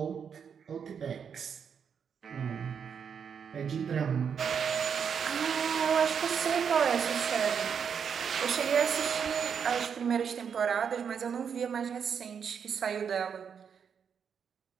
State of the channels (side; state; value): left; quieter; 7.1 dB